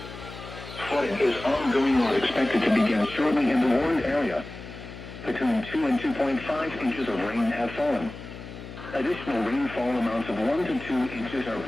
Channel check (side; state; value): left; noise; hum, 13 dB below the sound